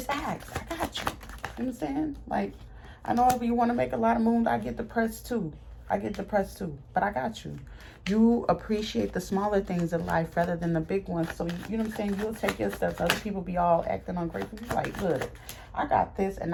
ask. I got you. You know what I'm saying? Like, I know if you want to make a lot of moves, I get depressed too. But I got you. You appreciate the smaller things in life rather than the big ones. So, you know what I'm saying? You'll take your steps. Other people be all acting ungrateful. You're like, look, I got this, and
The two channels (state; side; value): identical; both; correlation 1.00